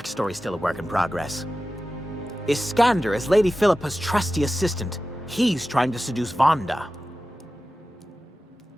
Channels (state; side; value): normal; both; correlation 0.94